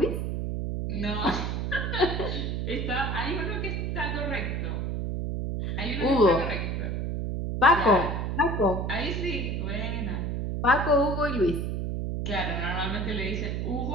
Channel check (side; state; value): right; noise; hum, 1 dB below the sound